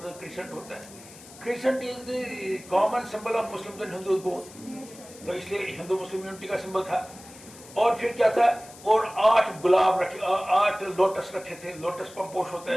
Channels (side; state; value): left; noise; hiss, 19 dB below the sound